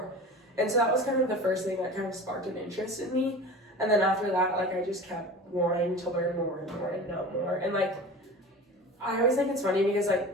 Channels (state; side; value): normal; both; correlation 0.35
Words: And so that was kind of the first thing that kind of sparked an interest in me. And then after that, like, I just kept wanting to learn more and more and know more. And like, I always think it's funny because like